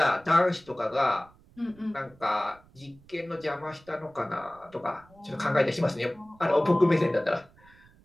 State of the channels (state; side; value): noise; right; rumble, 27 dB below the sound